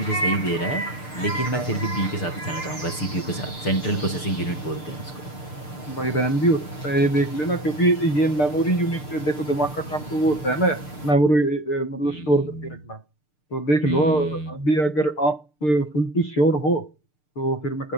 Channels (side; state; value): right; late; 6.7 ms